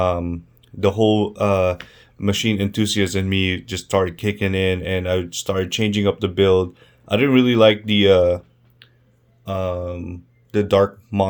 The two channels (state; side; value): identical; both; correlation 1.00